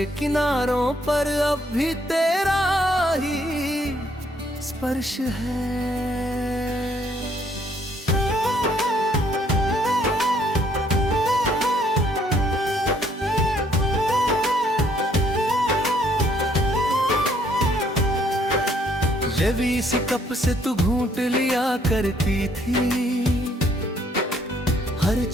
किनारों पर अब भी तेरा ही स्पर्श है। जब इसी कप से तू घूंट लिया करती थी, हर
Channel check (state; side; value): normal; both; correlation 0.66